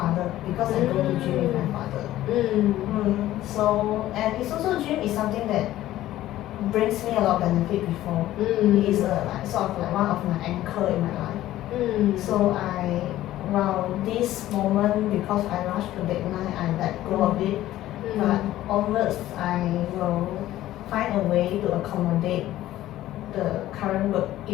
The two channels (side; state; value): right; quieter; 14.4 dB